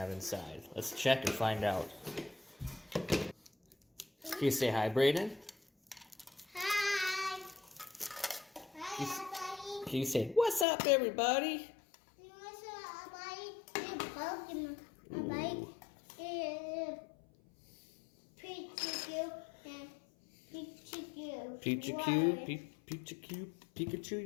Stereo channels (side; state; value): right; drops out; at 10.7 s